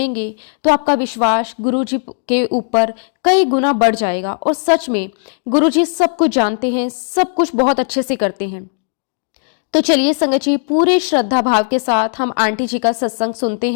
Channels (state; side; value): silent; right; digital silence